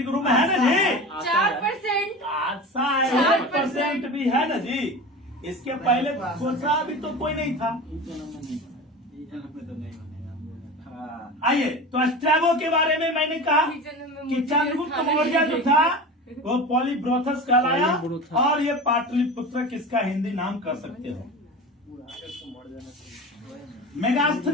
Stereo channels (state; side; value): normal; both; correlation 0.31